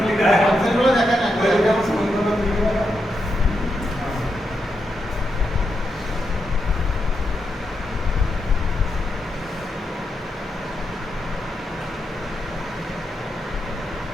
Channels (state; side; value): normal; both; correlation 0.84